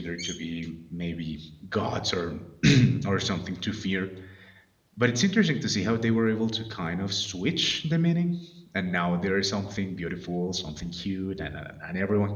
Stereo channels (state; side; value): identical; both; correlation 1.00